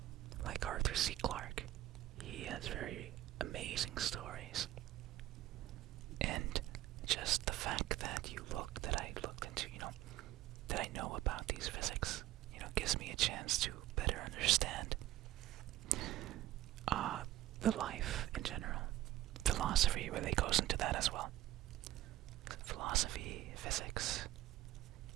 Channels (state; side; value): quieter; left; 14.6 dB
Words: Like Arthur C. Clarke. He has very amazing stories. And just the fact that I looked into, that I know about these physics, gives me a chance to better understand the life in general. Philosophy really goes into that as well. Philosophy, physics,